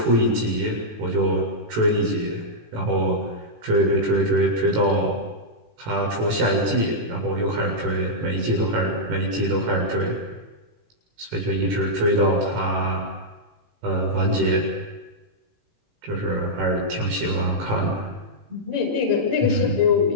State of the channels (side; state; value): left; late; 18 ms